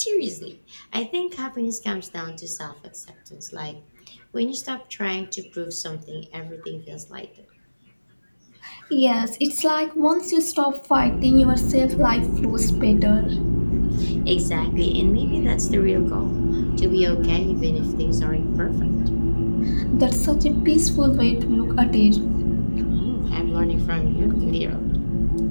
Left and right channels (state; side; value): inverted; both; correlation -1.00